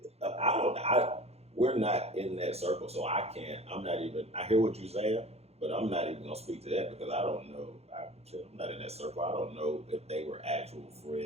We're not in that circle, so I can't. I hear what you're saying, but I'm not even gonna speak to that because I don't know. I'm not in that circle. I don't know if they were actual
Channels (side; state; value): left; late; 0.30 ms